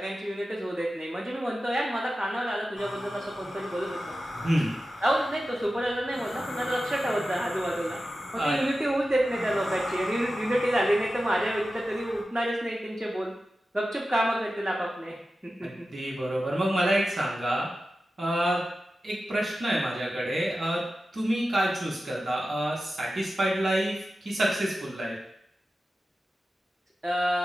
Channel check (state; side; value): normal; both; correlation 0.93